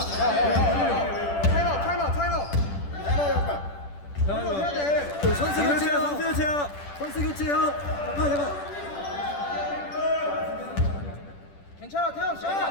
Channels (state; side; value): late; right; 10 ms